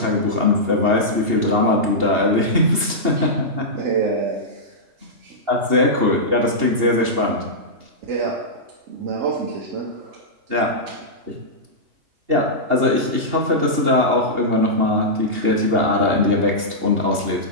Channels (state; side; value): late; left; 2.8 ms